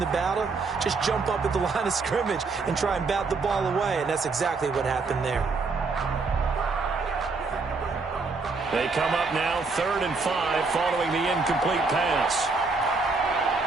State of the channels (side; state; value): left; quieter; 4.1 dB